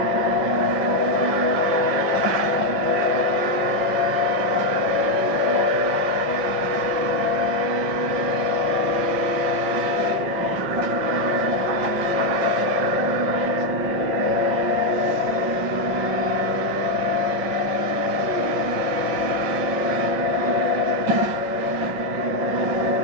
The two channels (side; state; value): left; late; 6.0 ms